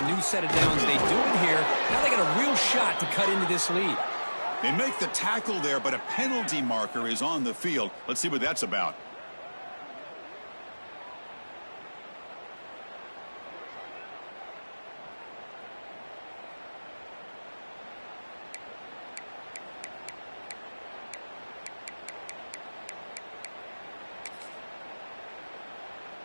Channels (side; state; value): both; inverted; correlation -1.00